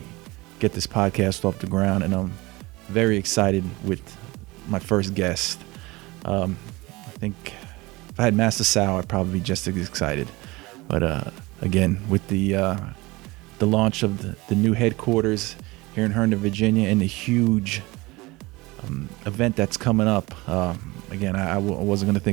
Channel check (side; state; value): left; quieter; 22.2 dB